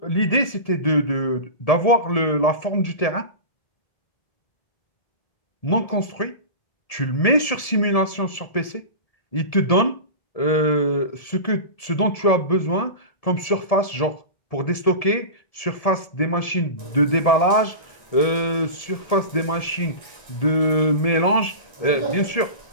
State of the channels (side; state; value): right; late; 1.7 ms